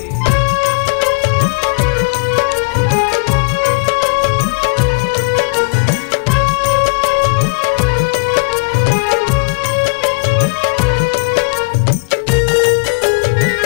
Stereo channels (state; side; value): quieter; right; 32.2 dB